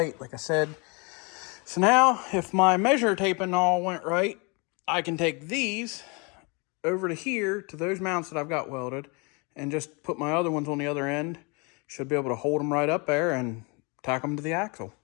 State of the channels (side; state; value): right; quieter; 31.0 dB